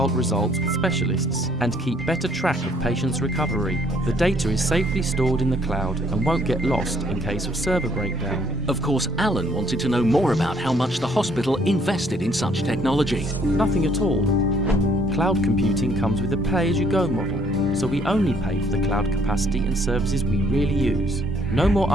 results with specialists and keep better track of patients' recovery. The data is safely stored in the cloud and won't get lost in case of server breakdown. Of course, Alan wanted to know more about how much the hospital invested in such technology. Nothing at all. Cloud computing comes with a pay-as-you-go model, so we only pay for the cloud capacity and services we really use. No more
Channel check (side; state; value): both; normal; correlation 0.64